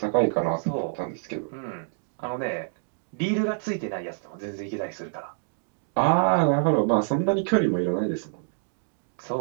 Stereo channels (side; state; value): left; silent; digital silence